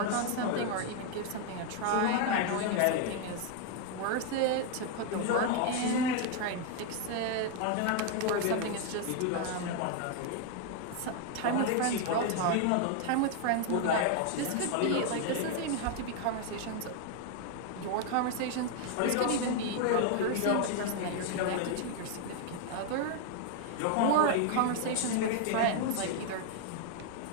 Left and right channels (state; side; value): different; both; correlation 0.01